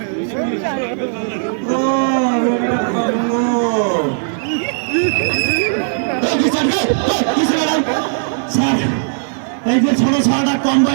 স্যার এই যে ছোট ছোটটা কম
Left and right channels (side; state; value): left; silent; digital silence